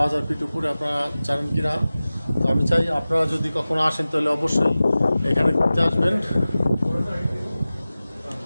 ফিট উপরে, আপনারা জানেন কি না। তো আমি চাই আপনারা যদি কখনো আসেন তাহলে অবশ্যই এখানে ঘুরতে আসবেন।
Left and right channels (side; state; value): both; inverted; correlation -0.97